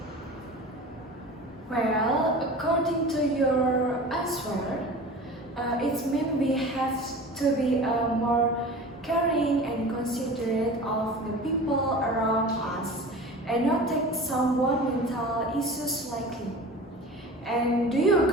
Well, according to your answer, it means we have to be more caring and considerate of the people around us and not take someone's mental issues lightly. And do you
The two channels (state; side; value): normal; both; correlation 0.37